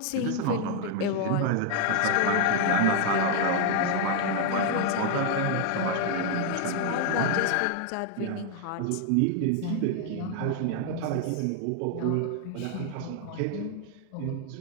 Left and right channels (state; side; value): different; both; correlation 0.00